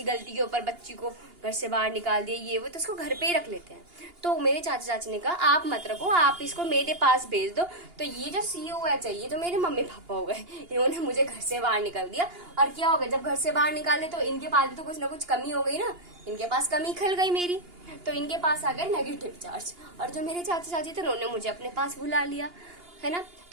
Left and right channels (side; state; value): left; late; 2.8 ms